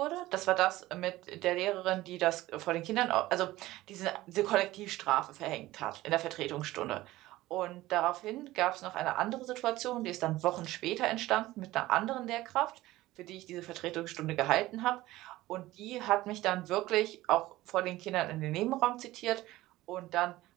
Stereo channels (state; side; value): quieter; left; 17.2 dB